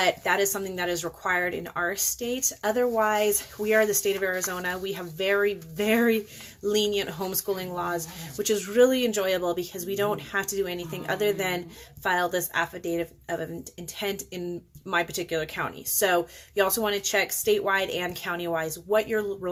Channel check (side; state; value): both; identical; correlation 1.00